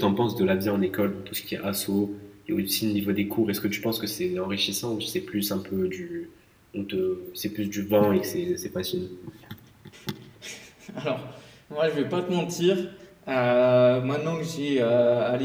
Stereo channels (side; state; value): both; identical; correlation 1.00